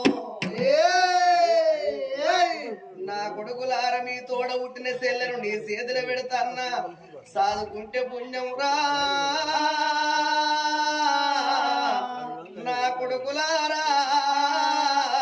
నా కొడుకులార మీ తోడ పుట్టిన చెల్లెను నీ చేతులు పెడతాన్నా సాదుకుంటే పుణ్యం రా నా కొడుకులారా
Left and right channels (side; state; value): both; identical; correlation 1.00